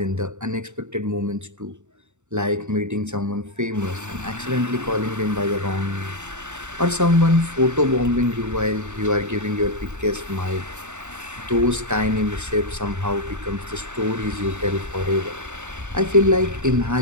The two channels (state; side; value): late; left; 0.84 ms